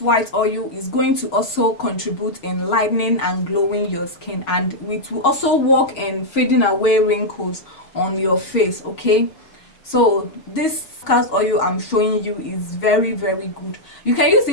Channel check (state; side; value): late; right; 6.2 ms